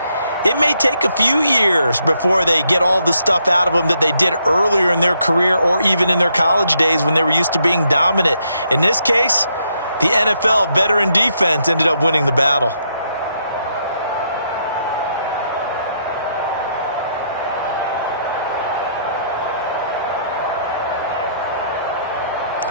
it may take a few years before they get all the stuff out of them that they did earlier in their career or even in their college days when they were used to being dominant. In this case, the NFL veteran defense ended up winning the battle.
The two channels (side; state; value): both; inverted; correlation -0.75